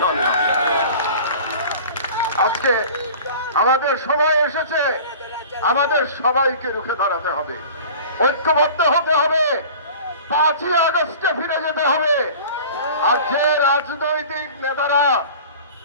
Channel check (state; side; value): inverted; both; correlation -0.41